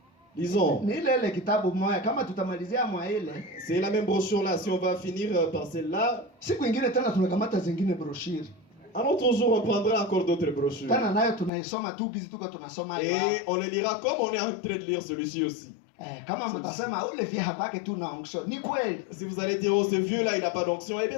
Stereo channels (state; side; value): drops out; right; at 11.5 s